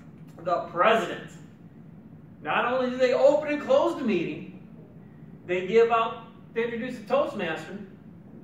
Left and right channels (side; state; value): both; identical; correlation 1.00